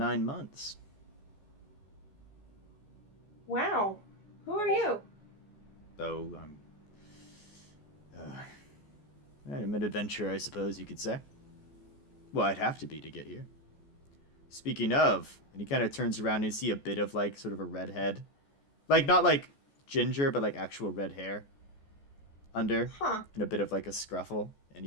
months. Wow. Who are you? Oh, I'm an adventurer, I suppose you could say. Well, I'd have to be to get here. Speaking of, and he kind of turns around and you see a bit of like sort of a red head. Like not like ginger, but like actual red hair under. Huh. And a bit of like a scruffle. And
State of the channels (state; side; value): late; right; 14 ms